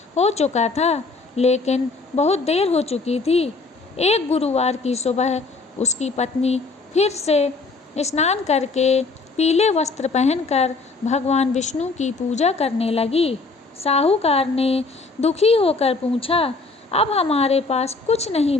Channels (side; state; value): right; quieter; 3.8 dB